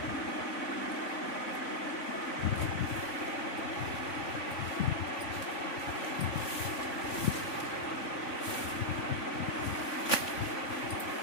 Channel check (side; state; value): right; late; 3.5 ms